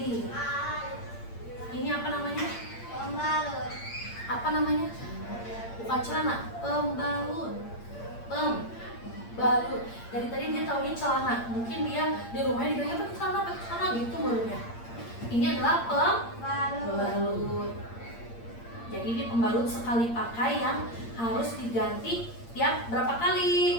Ini apa namanya? Pembalut. Apa namanya? Bukan celana, pembalut. Pembalut. Dari tadi dia taunya celana. Mungkin dia di rumahnya digaya pakai celana gitu menurutnya. Ini adalah pembalut. Jadi ini pembalut sekali pakai yang harus diganti tiap berapa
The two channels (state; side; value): late; right; 8.7 ms